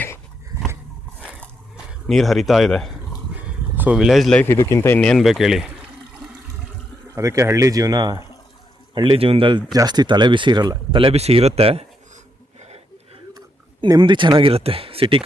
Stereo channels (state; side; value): normal; both; correlation 0.79